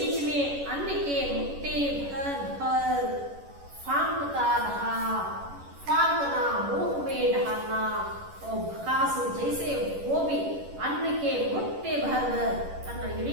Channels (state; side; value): late; left; 11 ms